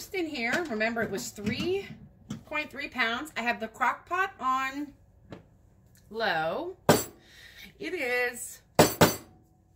in here. Remember, it was 3.3 pounds. I have the crock pot on low. It is,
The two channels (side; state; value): both; identical; correlation 1.00